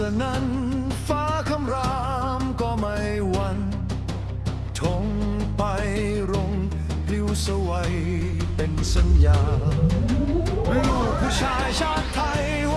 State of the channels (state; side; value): identical; both; correlation 1.00